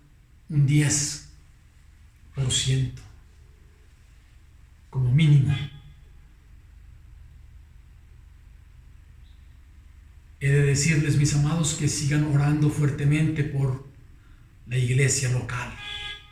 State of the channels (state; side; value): identical; both; correlation 1.00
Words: un 10% como mínimo? He de decirles, mis amados, que sigan orando fuertemente por la iglesia local.